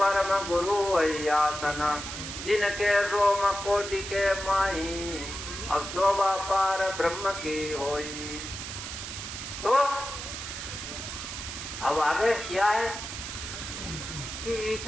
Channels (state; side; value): noise; right; hiss, 7 dB below the sound